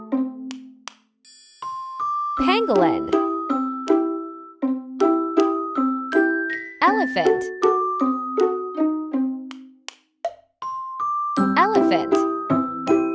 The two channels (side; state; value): both; identical; correlation 1.00